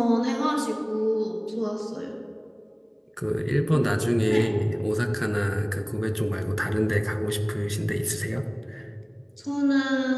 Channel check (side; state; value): both; identical; correlation 1.00